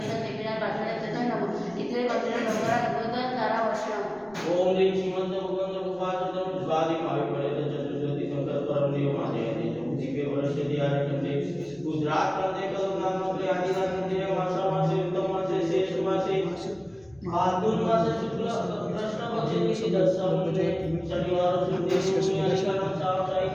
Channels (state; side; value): noise; left; rumble, 28 dB below the sound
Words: देवीनाथ पाठवण्यात नमः इथे मंदिर नवरा गणपती तारा वर्षम। ओम ह्रीं श्रीमंत भगवंत उपासतं स्वादि भावी पड़े चतुर्दशी संकल्प परम देव महादेव दिव्य वर्ष दियारकते गुजरात मध्ये कलमनाथ मध्ये आदिनाथ मध्ये मासा मासे उत्तम मासे शेष मासे फाल्गुन मासे शुक्ल कृष्ण पक्षे दशम शनिवार शुक्ल शनिवार